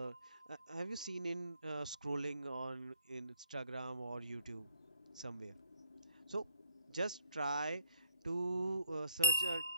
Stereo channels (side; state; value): both; inverted; correlation -0.65